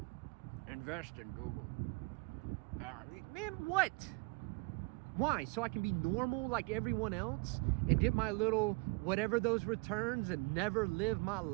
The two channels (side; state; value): left; quieter; 28.1 dB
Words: Invest in Google. Man, what? Why? So I can be normal like everyone else and get my little whatever those returns and never live my